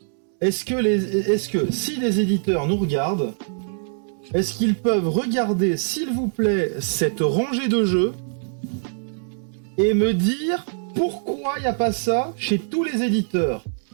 Est-ce que si des éditeurs nous regardent, est-ce qu'ils peuvent regarder, s'il vous plaît, cette rangée de jeux et me dire pourquoi il n'y a pas ça chez tous les éditeurs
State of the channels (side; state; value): left; silent; 63 dB below the other